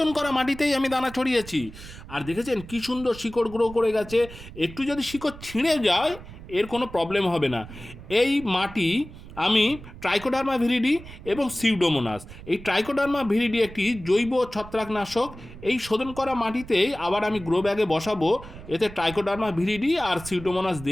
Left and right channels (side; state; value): right; noise; rumble, 16 dB below the sound